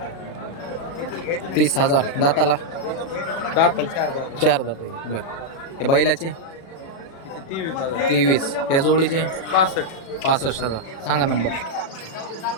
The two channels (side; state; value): right; late; 36 ms